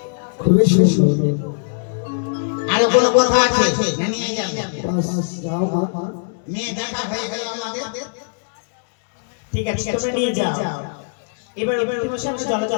খুবই সুন্দর। আরো কোনো কথা আছে না নিয়ে যাবে বাস, যাও মা। মেয়ে দেখা হয়ে গেল আমাদের ঠিক আছে তোমরা নিয়ে যাও। এবার অতি মাসে আমরা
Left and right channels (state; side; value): silent; right; digital silence